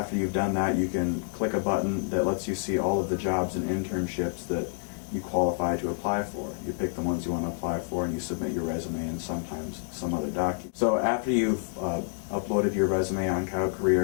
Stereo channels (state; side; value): silent; right; digital silence